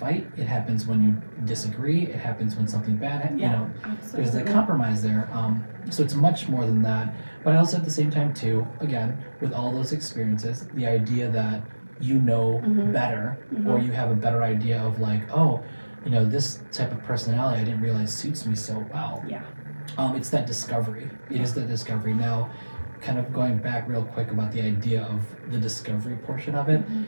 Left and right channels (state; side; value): inverted; both; correlation -1.00